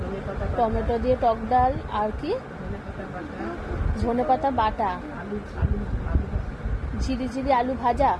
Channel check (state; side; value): identical; both; correlation 1.00